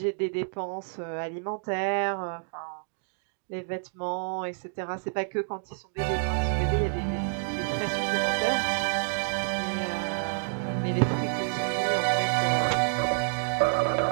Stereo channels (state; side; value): silent; left; digital silence